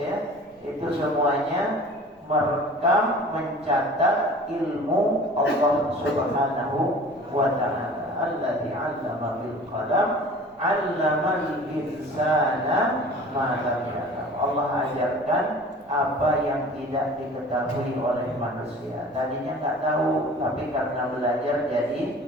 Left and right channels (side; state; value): both; normal; correlation 0.43